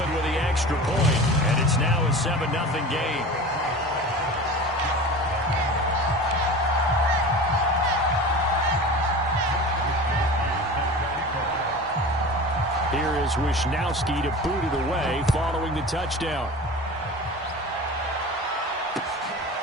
with the extra point, and it's now a 7-0 game. Here is Wisnowski to boot it away following the touchdown.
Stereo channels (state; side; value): normal; both; correlation 0.34